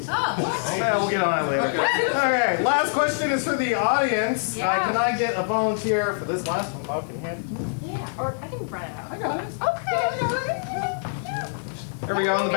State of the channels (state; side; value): silent; right; digital silence